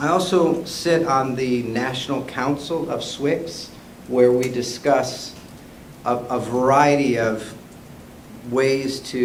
also sit on the National Council of SWICs, where we discuss a variety of ways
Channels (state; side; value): identical; both; correlation 1.00